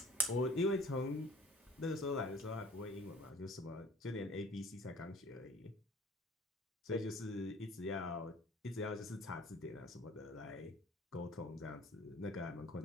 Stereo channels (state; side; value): normal; both; correlation 0.48